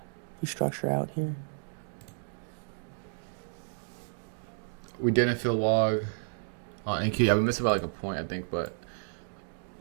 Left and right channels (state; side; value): silent; left; digital silence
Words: we structure out here. We didn't fill log on NQ. Yeah, we missed about like a point, I think, but